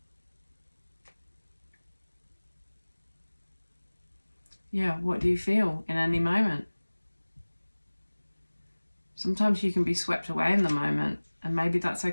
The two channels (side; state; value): both; inverted; correlation -1.00